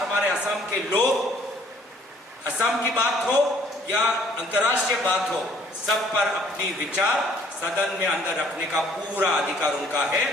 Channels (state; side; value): normal; both; correlation 0.60